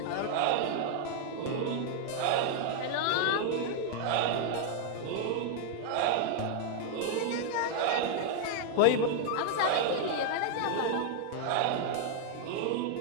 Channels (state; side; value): different; both; correlation -0.01